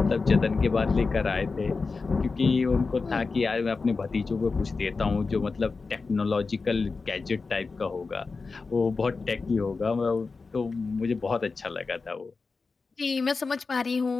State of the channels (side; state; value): right; quieter; 4.3 dB